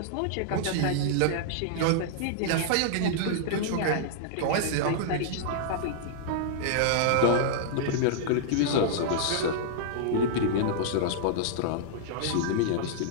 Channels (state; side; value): different; both; correlation -0.02